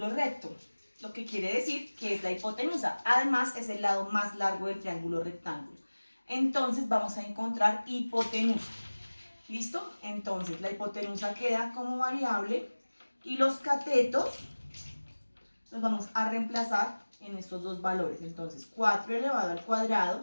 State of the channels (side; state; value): both; inverted; correlation -1.00